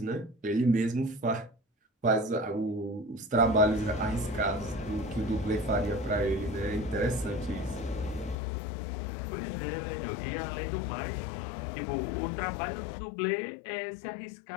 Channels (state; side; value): drops out; right; at 8.3 s